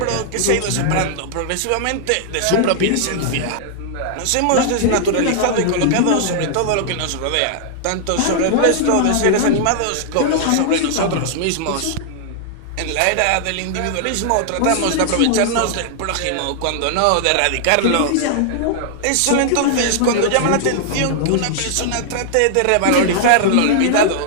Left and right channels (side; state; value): both; different; correlation -0.01